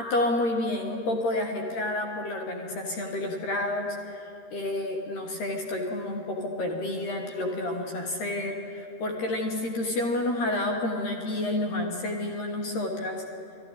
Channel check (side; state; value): right; late; 13 ms